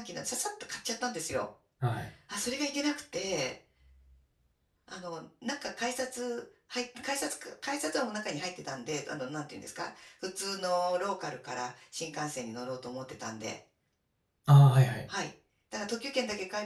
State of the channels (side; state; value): both; identical; correlation 1.00